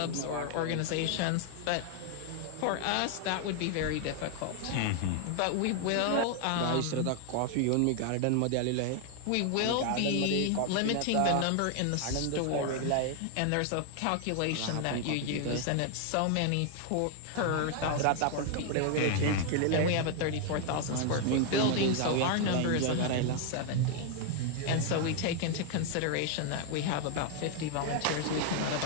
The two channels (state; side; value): different; both; correlation 0.00